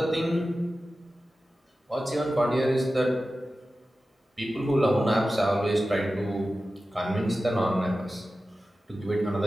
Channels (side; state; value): both; normal; correlation 0.94